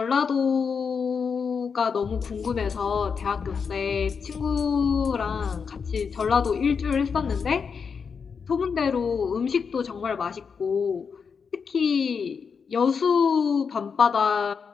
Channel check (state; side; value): quieter; right; 6.0 dB